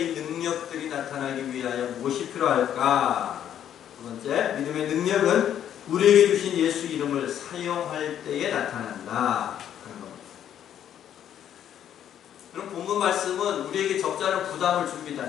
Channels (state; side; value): quieter; right; 10.1 dB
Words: 능력들이 나타나기 위하여 무엇이 필요할까? 두 번째, 믿음의 능력은 우리에게 주신 예수 이름을 사용할 때에 나타난다. 그럼 본문 말씀은 우리에게 적지 않은 부담을